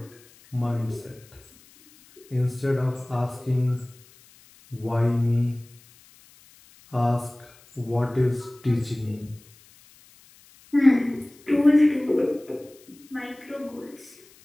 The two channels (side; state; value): left; noise; hiss, 26 dB below the sound